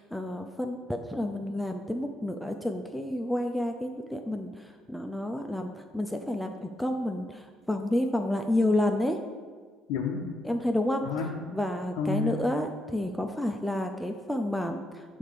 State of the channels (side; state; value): both; normal; correlation 0.83